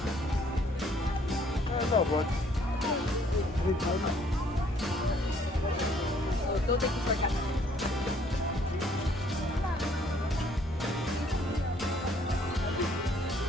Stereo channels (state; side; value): normal; both; correlation 0.62